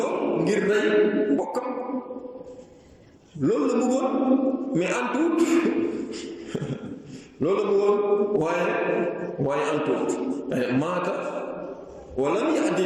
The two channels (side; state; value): both; identical; correlation 1.00